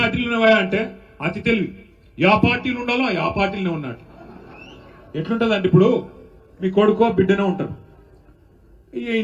ఉన్నాయా అంటే అతి తెలివి. యా పార్టీలు ఉండాలో ఆ పార్టీలోనే ఉన్నాడు. ఎట్లుంటదంటే ఇప్పుడు మీ కొడుకో బిడ్డనే ఉంటారు,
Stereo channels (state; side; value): identical; both; correlation 1.00